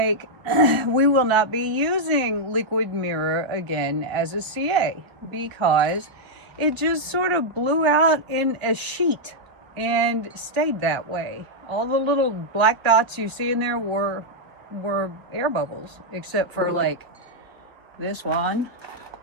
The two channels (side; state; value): left; late; 1.1 ms